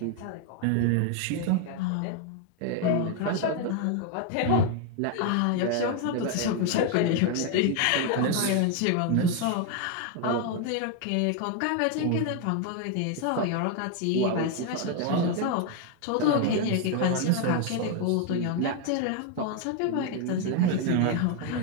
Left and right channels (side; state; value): both; different; correlation 0.01